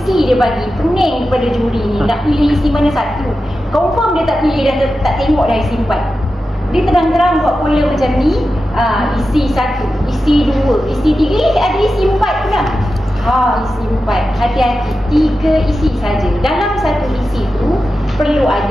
dia bagi. Pening kepada juri ni, nak pilih isi mana satu. Confirm dia tak pilih, dah tak tengok dah isi 4. Dia terang-terang buat pola macam ni. Isi 1, isi 2, isi 3, ada isi 4 pula. Isi 4. Hati-hati, 3 isi saja. Dalam satu isi tu perlu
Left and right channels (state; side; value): normal; both; correlation 0.92